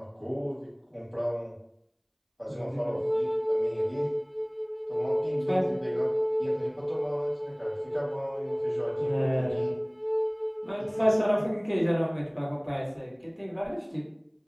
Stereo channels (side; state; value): both; identical; correlation 1.00